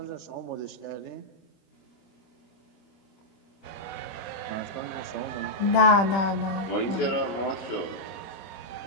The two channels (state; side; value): late; right; 25 ms